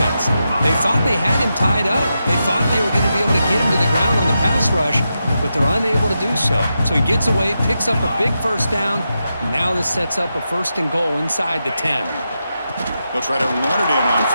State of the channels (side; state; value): both; inverted; correlation -0.87